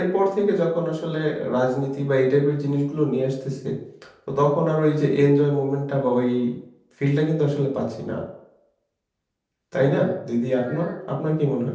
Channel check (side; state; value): both; identical; correlation 1.00